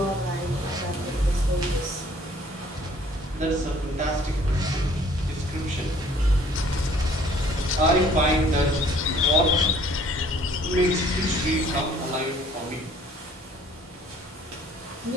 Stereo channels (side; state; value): both; normal; correlation 0.57